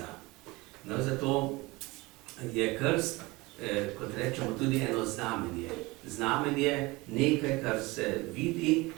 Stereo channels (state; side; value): quieter; left; 22.8 dB